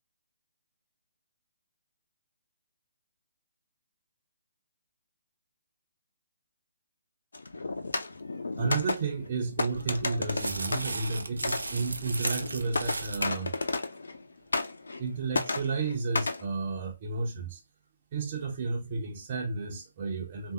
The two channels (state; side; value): inverted; both; correlation -0.80